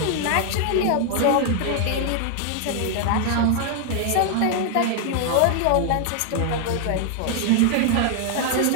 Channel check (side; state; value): both; different; correlation 0.00